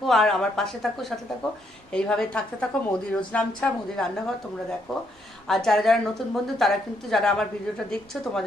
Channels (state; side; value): normal; both; correlation 0.74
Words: আর আমার পাশে থাকো, সাথে থাকো, এইভাবে থাকতে থাকো। মোদি রোজ নামছা, মোদি রান্নাঘর তোমরা দেখো। আর যারা যারা নতুন বন্ধু তারা কিন্তু, যারা আমার ভিডিওটা দেখছো